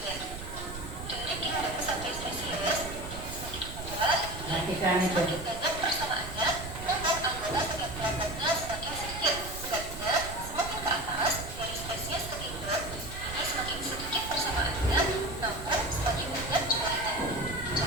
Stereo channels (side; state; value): right; noise; rumble, 10 dB below the sound